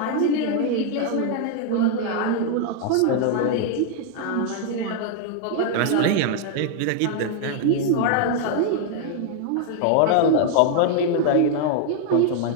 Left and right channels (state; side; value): different; both; correlation 0.00